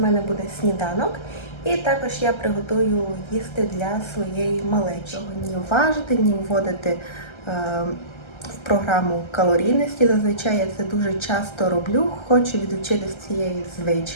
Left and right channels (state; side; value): late; right; 1.3 ms